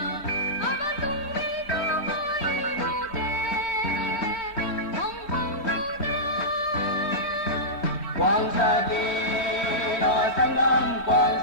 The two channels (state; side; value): late; right; 4.4 ms